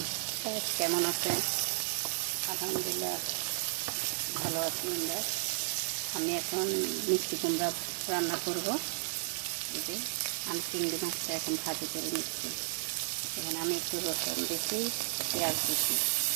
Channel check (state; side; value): silent; left; digital silence